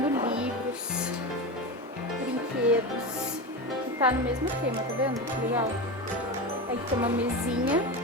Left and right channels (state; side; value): normal; both; correlation 0.21